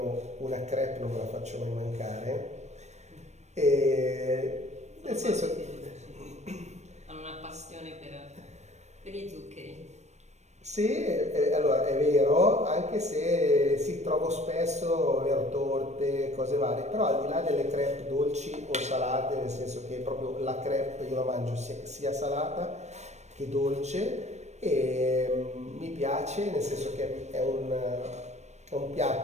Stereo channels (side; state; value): left; late; 0.33 ms